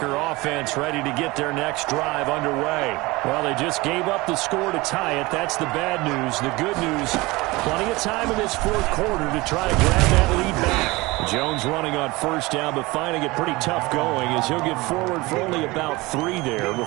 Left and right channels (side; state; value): left; quieter; 22.1 dB